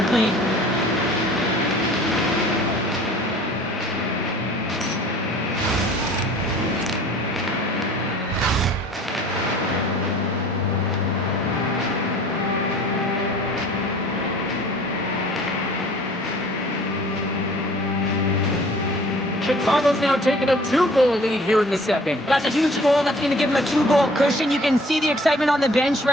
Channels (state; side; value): normal; both; correlation 0.50